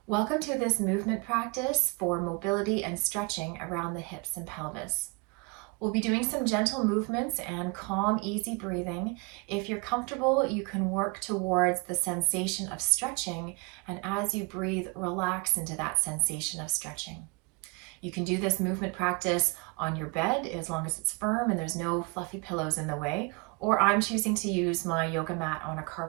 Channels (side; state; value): left; quieter; 29.1 dB